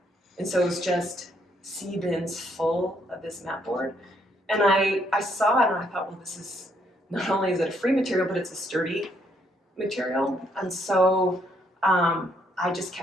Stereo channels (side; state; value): both; normal; correlation 0.71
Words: And so it was just sea bins full of this mat board. And I saw it and I thought, well, this is, not only is it a free material, but it's a sturdy material. And so I just